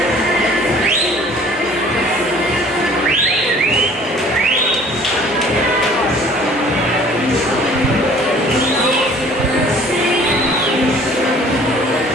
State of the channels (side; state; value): both; normal; correlation 0.52